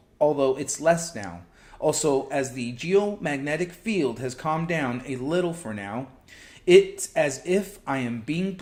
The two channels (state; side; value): identical; both; correlation 1.00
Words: although it's less now. Also, as the geomagnetic field has calmed down a little for now, it's as if I am being